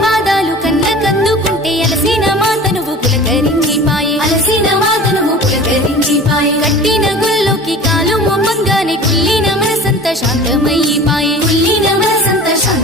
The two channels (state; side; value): normal; both; correlation 0.40